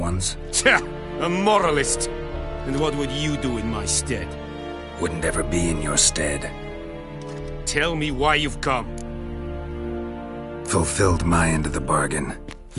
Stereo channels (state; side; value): identical; both; correlation 1.00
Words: Tja, a moralist. And what would you do in my stead? Wouldn't ever be in your stead. Tell me why you've come. Fulfilled my end of the bargain.